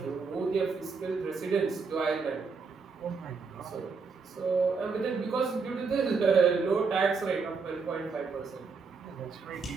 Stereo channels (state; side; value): quieter; left; 4.9 dB